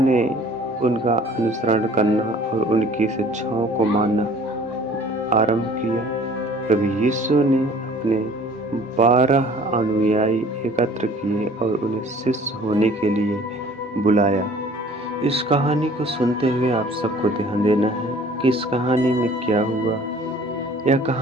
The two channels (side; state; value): both; normal; correlation 0.51